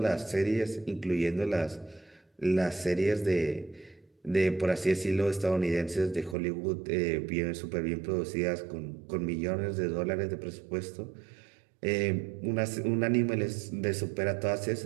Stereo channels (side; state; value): left; drops out; at 6.4 s